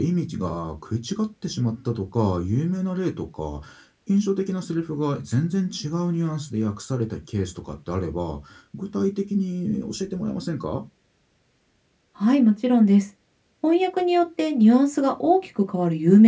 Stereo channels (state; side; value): identical; both; correlation 1.00